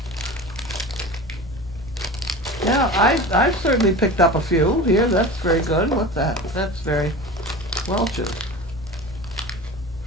Yeah, I've certainly picked up a few here. That's very good. What's that? That's very Welch's.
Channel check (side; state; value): both; normal; correlation 0.33